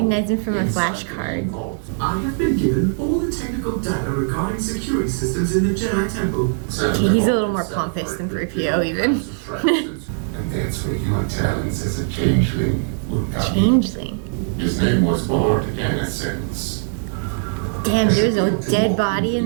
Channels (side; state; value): left; silent; 65 dB below the other